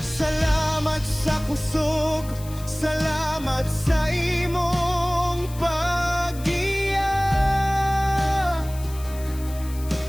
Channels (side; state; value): left; noise; hiss, 18 dB below the sound